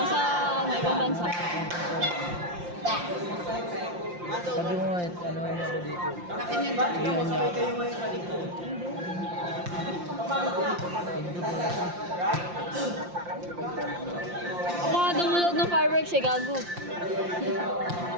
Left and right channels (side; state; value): left; late; 5.7 ms